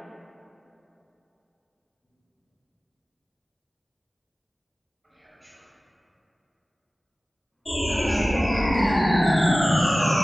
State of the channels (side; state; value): both; normal; correlation 0.97